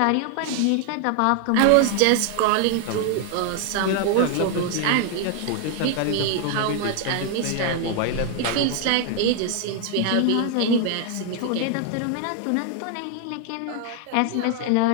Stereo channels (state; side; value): different; both; correlation 0.00